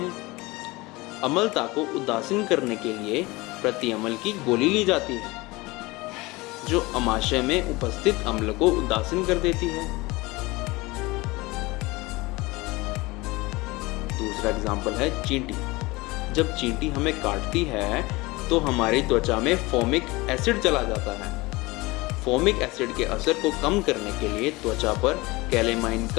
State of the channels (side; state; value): right; quieter; 22.4 dB